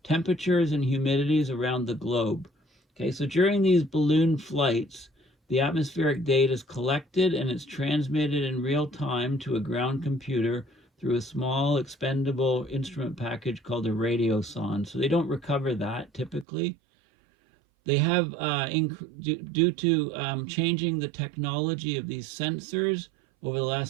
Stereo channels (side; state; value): left; drops out; at 16.4 s